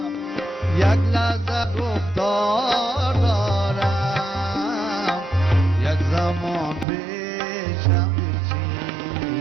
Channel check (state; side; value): drops out; left; at 6.9 s